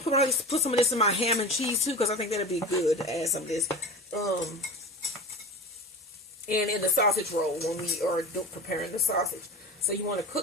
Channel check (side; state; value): both; normal; correlation 0.31